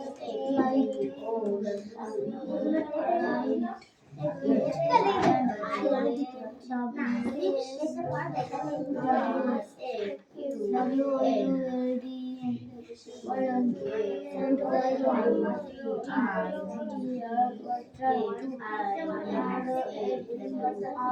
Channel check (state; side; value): identical; both; correlation 1.00